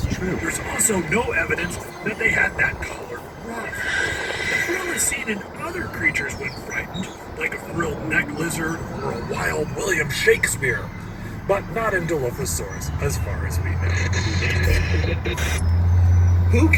true. There's also no evidence that they had that colored ruff. The frill is seen in other creatures when frightened, like a frilled neck lizard or a wild William Shakespeare, but not in Dilophosaurus, as far as we know. Who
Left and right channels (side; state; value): both; identical; correlation 1.00